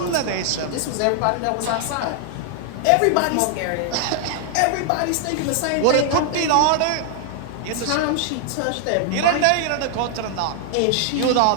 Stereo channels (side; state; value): both; different; correlation 0.00